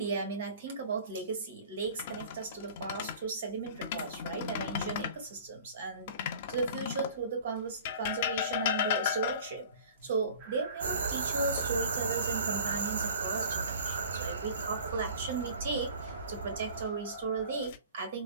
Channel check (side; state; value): both; inverted; correlation -0.45